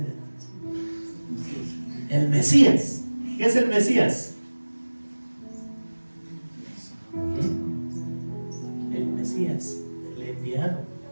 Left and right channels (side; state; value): both; inverted; correlation -1.00